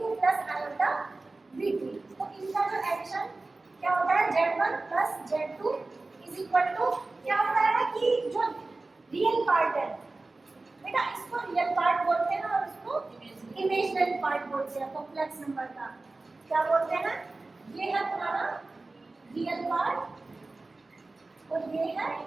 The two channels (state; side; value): quieter; left; 3.3 dB